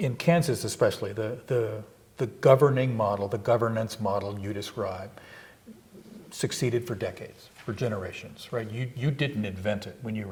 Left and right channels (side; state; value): both; identical; correlation 1.00